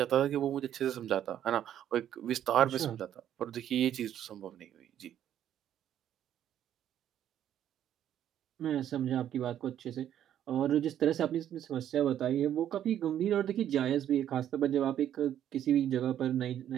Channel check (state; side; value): quieter; left; 10.7 dB